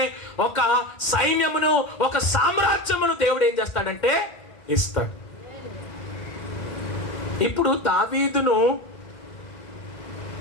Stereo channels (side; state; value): right; late; 2.1 ms